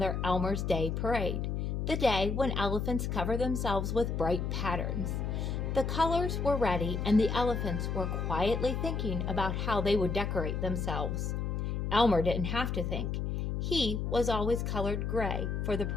Elmer's Day parade, the day when elephants cover themselves with bright patterns. The colors were ready and the elephants were quietly thinking about how they would decorate themselves. Elmer didn't have to think. He was always colored gray for the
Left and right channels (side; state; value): left; noise; hum, 1 dB below the sound